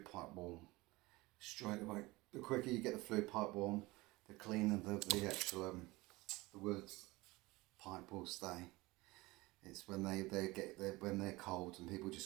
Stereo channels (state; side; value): quieter; left; 21.5 dB